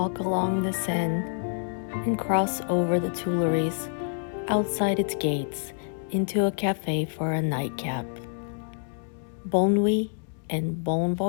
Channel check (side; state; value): right; silent; digital silence